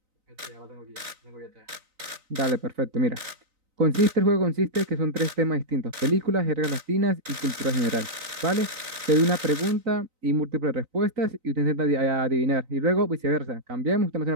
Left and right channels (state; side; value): late; left; 3.9 ms